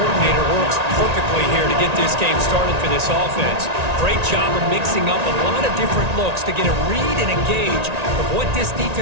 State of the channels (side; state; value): left; late; 1.9 ms